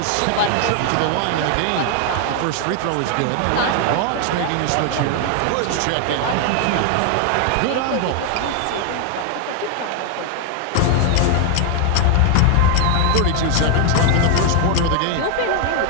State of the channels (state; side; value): different; both; correlation 0.01